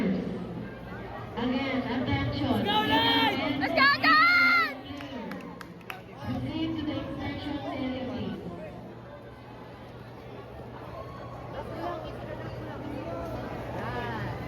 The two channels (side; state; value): both; identical; correlation 1.00